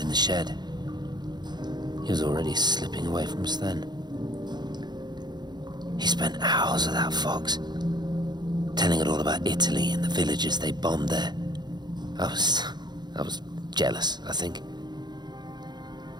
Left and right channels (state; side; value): late; left; 0.21 ms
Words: the shed. He was already slipping away from us then. He spent hours with that fox, telling it all about Italy and the villages they bombed there. I was jealous, I think.